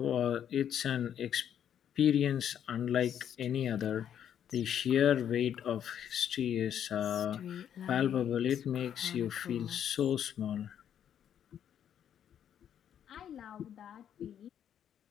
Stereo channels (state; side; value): quieter; right; 9.4 dB